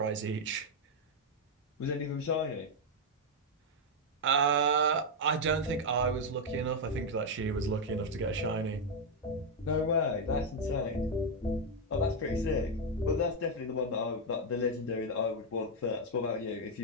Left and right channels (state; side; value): normal; both; correlation 0.01